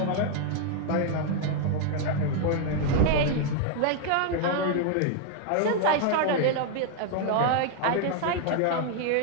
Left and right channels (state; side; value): different; both; correlation 0.00